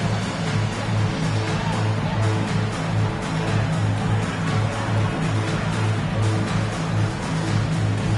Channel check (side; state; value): both; identical; correlation 1.00